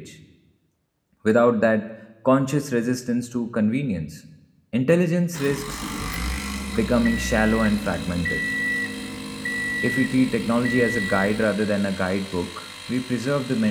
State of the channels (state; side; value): identical; both; correlation 1.00